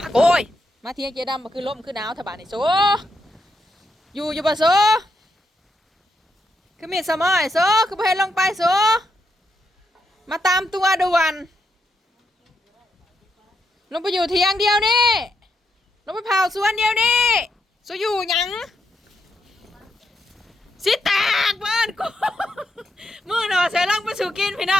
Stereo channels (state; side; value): normal; both; correlation 0.81